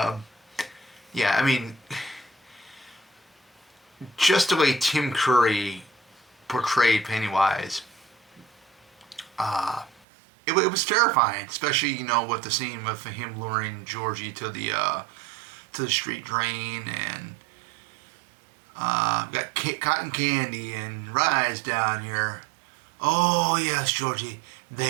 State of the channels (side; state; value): left; drops out; at 10.0 s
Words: yeah, I mean, just the way Tim Curry portrayed Pennywise, it was terrifying, especially with the scene with him luring Georgie to the street drain, and got cotton candy and rides down here. Oh yes, Georgie,